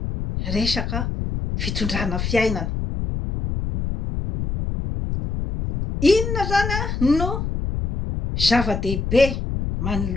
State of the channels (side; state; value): left; noise; rumble, 3 dB below the sound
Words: resaka fitondrana fiainana. Inona zany no zava-dehibe